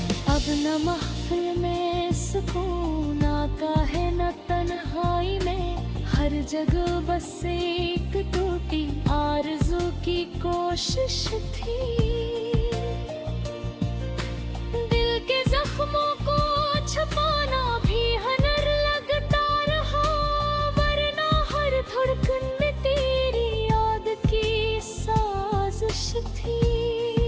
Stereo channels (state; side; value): identical; both; correlation 1.00